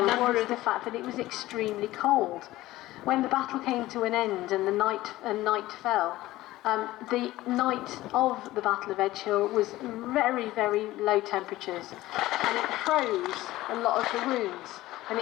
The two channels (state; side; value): quieter; right; 16.8 dB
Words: was the fact that it was extremely cold. When the battle came to an end and night fell, the night of the Battle of Edgehill was very, very low temperatures, and it froze a lot of the wounds, and